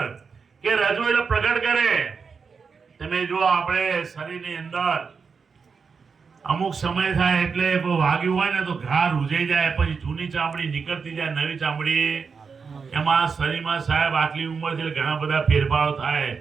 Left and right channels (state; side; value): quieter; left; 5.5 dB